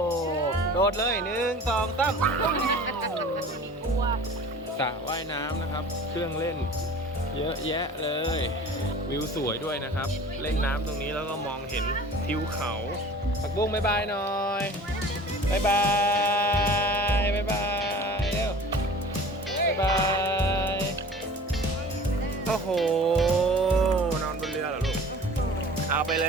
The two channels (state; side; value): normal; both; correlation 0.42